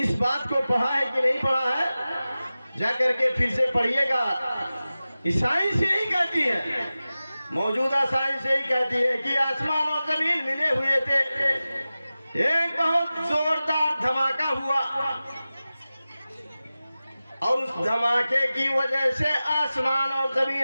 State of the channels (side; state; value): both; inverted; correlation -0.96